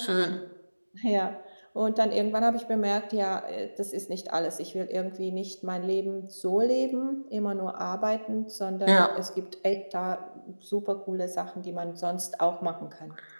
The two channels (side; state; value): both; inverted; correlation -1.00